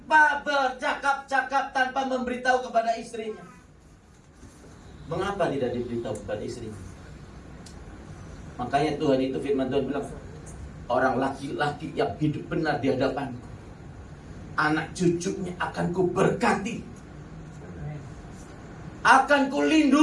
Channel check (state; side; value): identical; both; correlation 1.00